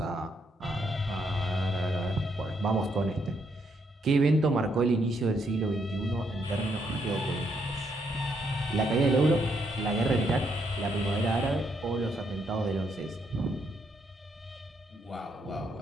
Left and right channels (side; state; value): both; normal; correlation 0.75